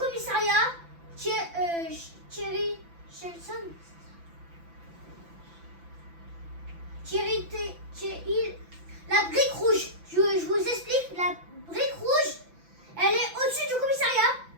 Thierry Shelson. La brique rouge. Je vous explique, la brique rouge, elle est au-dessus du commissariat.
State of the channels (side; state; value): left; late; 6.0 ms